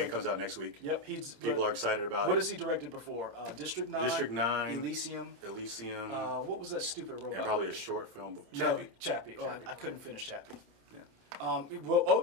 comes out next week. Yep. People are excited about it. What has he directed before? District 9. District 9. Elysium. What was that stupid robot? And probably a short film. Chappie. Chappie. Oh, I couldn't finish Chappie. Yeah. Well,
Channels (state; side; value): late; left; 29 ms